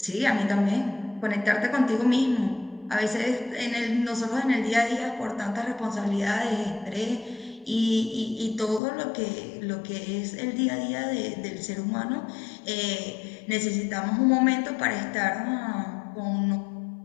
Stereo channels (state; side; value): drops out; right; at 8.8 s